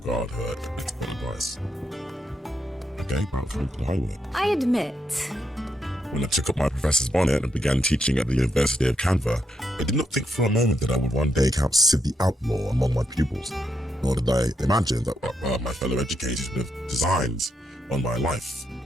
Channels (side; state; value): both; normal; correlation 0.80